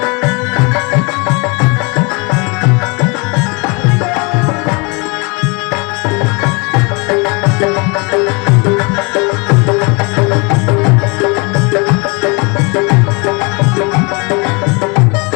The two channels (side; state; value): right; quieter; 30.1 dB